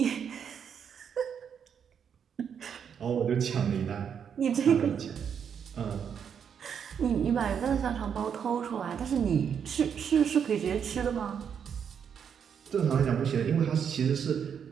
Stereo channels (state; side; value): quieter; left; 7.6 dB